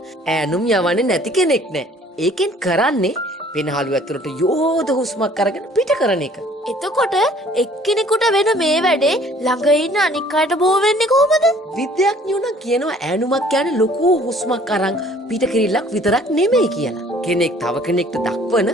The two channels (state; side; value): normal; both; correlation 0.55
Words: ඈනුම් යවන්නේ නැති කෙනෙක් නෑ. ඒකෙන් කරන්නේ පෙනහළු ඇතුළට යෝධ හුස්මක් අරගෙන පිට කරන එක. එතකොට එක්කෙනෙකුට වෙන මේ වැඩේ ළඟ ඉන්න අනික් අයට බෝ වෙන්නේ කොහොමද? විද්‍යාඥයෝ නම් කියනවා ඈනුමක් කියන්නේ ලොකු හුස්මක් අරන් පිට කිරිල්ලක් විතරක් නෙමෙයි කියලා. කෙනෙක් තව කෙනෙක්ට දක්වන